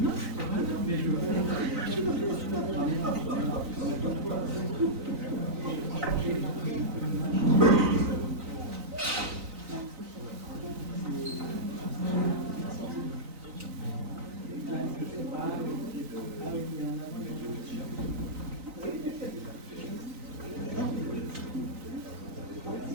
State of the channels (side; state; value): left; late; 3.9 ms